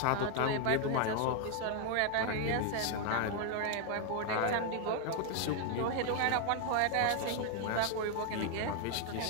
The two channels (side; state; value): both; different; correlation 0.00